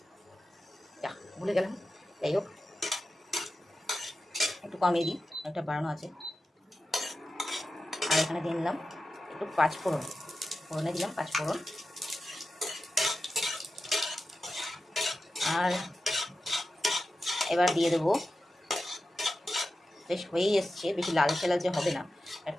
ভুলে গেলাম, যাই হোক একটু কমিয়ে দিই, একটা বাড়ানো আছে। আর এখানে দিয়ে দিলাম একটু 5 ফোড়ন, ফোড়নে দিলাম 5 ফোড়ন। আর এবার দিয়ে দেবো, বেশ হয়েই এসছে, বেশি লালচে লালচে হবে না,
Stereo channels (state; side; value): normal; both; correlation 0.92